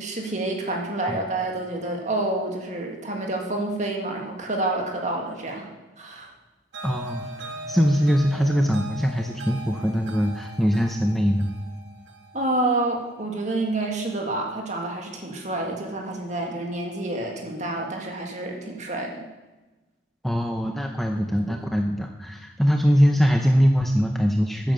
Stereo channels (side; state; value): both; normal; correlation 0.75